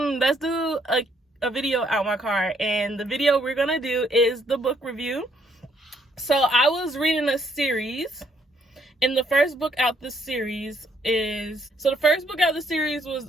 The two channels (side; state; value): both; normal; correlation 0.69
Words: do a video out my car. And the video we're gonna do is the book review. So I was reading a series. And the first book out the series was